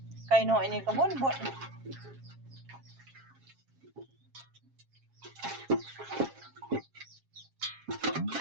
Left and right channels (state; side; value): late; left; 7.4 ms